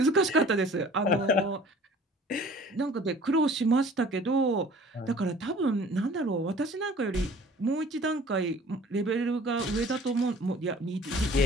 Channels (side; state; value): both; normal; correlation 0.49